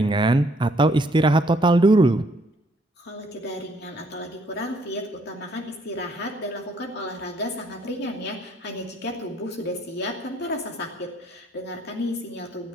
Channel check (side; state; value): both; normal; correlation 0.67